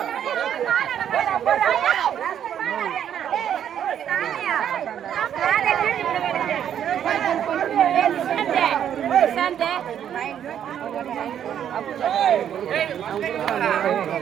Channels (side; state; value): left; quieter; 9.5 dB